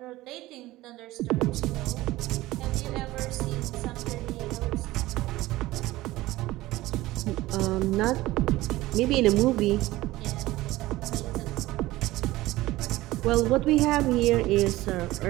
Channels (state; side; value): quieter; left; 17.8 dB